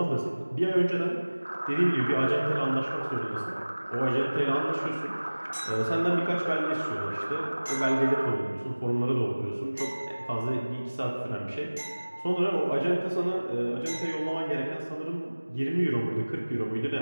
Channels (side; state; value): both; inverted; correlation -1.00